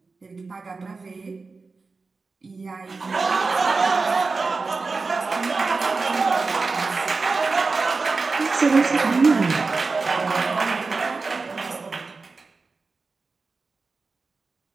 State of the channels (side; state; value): left; quieter; 4.1 dB